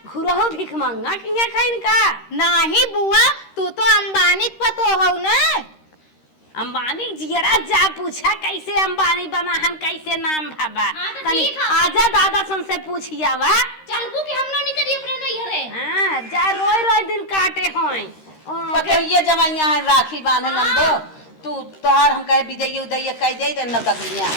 घुरहो भिख मंगा की खाइन का नाही बुआ तू तो अंबानी पतो हो ना। अंबानी जियरा जा पूछा कैसे अंबानी बना हम कैसे नाम भाबा हाँ, तो तनी ठीक है। आजा दादा सन से पूछिया वा। चलबू कि हम ना निकली अपने नैहरे। हां जा रोई दिन काटे होय पतैया जमाइया है राखी बांधे नंदो तू तोहार हम कहे विजय उदय कह दे दे नौकरियां।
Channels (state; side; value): late; right; 13 ms